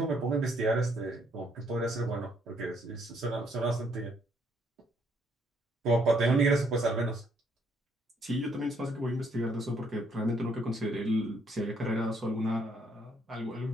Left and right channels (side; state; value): both; normal; correlation 0.69